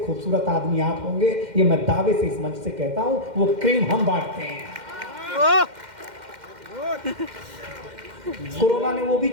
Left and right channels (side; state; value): left; late; 2.1 ms